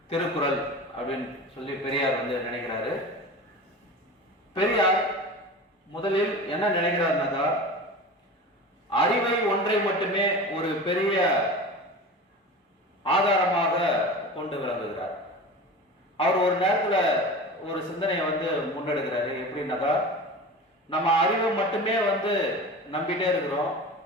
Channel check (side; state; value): both; normal; correlation 0.32